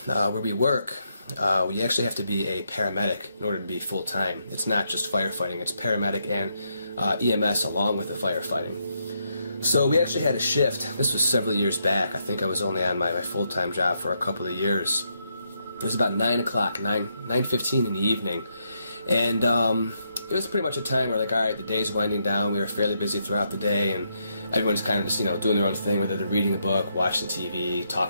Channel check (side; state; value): both; inverted; correlation -0.79